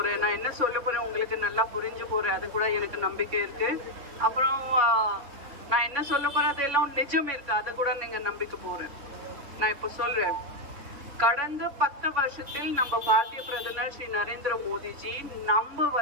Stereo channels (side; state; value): left; late; 3.5 ms